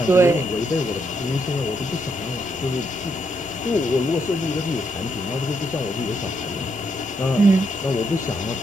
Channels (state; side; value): normal; both; correlation 0.77